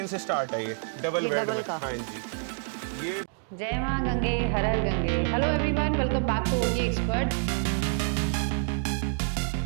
से स्टार्ट है। ये डबल बेड में। हाँ जी। ये जय मां गंगे, हर हर Gange. Hello everyone, welcome back to OT expert.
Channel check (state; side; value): silent; left; 60 dB below the other